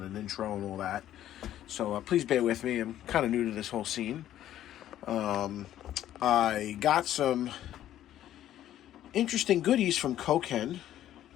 an intro and all that, so please bear with me. I'm kind of new to this whole scene. I got some interesting goodies from Koken.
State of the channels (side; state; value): right; quieter; 12.2 dB